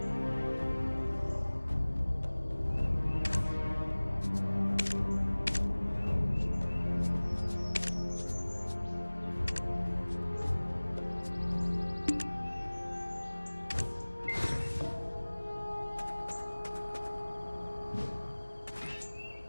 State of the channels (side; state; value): both; inverted; correlation -1.00